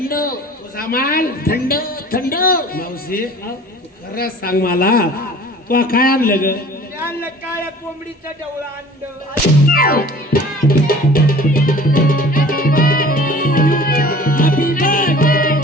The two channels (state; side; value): normal; both; correlation 0.46